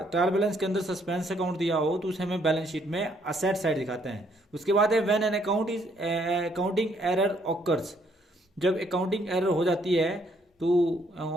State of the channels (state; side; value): normal; both; correlation 0.68